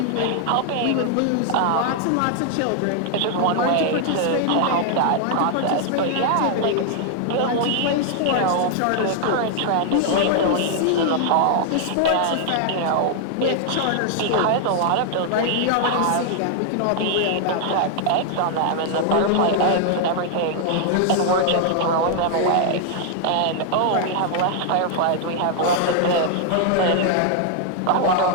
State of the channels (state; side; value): different; both; correlation 0.00